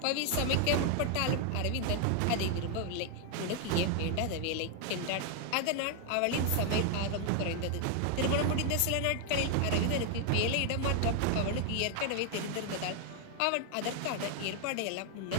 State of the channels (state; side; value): different; both; correlation 0.00